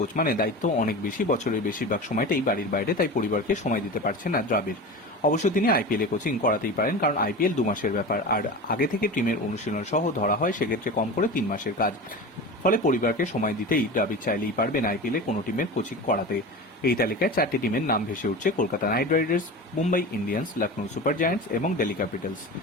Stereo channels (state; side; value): normal; both; correlation 0.30